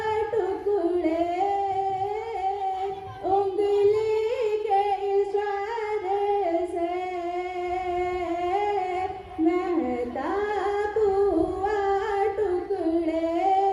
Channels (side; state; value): both; identical; correlation 1.00